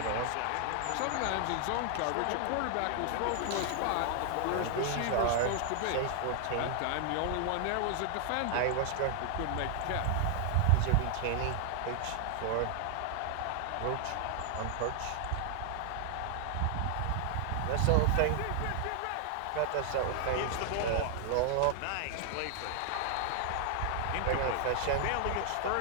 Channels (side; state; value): both; different; correlation 0.00